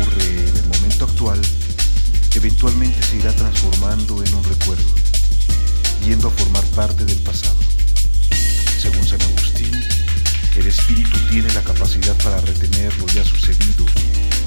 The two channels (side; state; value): both; inverted; correlation -1.00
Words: en el momento actual, eventualmente se irá transformando en un recuerdo, yendo a formar parte del pasado. Según San Agustín, el espíritu tiene la capacidad para retener lo ya sucedido